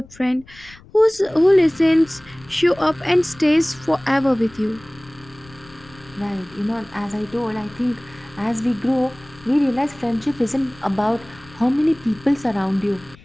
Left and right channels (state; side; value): noise; left; rumble, 23 dB below the sound